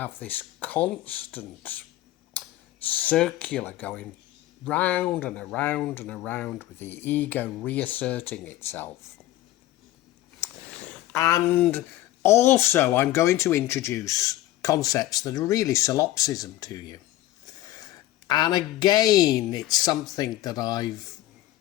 this constant circular going round and around and around, with the ego reasserting itself. And also, I'm going to introduce concepts that are really solipsism to you. And again, it's something that I've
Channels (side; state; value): right; quieter; 15.2 dB